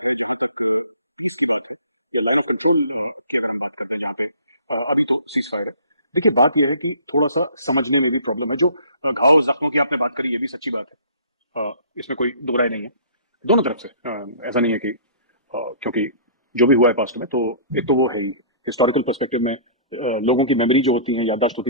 है, जहां तक पीस की बात है, या लाइन ऑफ कंट्रोल की अगर हम बात करते हैं, जहां पे अभी तो सीज फायर है। देखिए, बात यह है कि थोड़ा सा समझने में भी प्रॉब्लम है। जो घाव जख्मों की आपने बात करी, ये भी सच्ची बात है। इसमें कोई दो राय नहीं है दोनों तरफ से। ऐसा नहीं है कि क्योंकि जो भी हुआ है पास्ट में, तो एक तो वो है ही हिस्टोरिकल पर्सपेक्टिव में। लोगों की मेमोरी जो होती है, याददाश्त होती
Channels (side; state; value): both; inverted; correlation -0.49